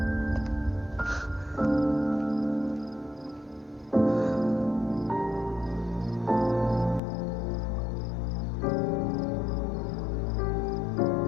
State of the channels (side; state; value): right; drops out; at 7.0 s